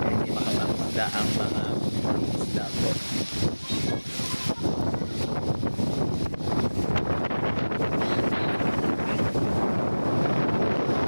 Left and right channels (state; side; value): inverted; both; correlation -1.00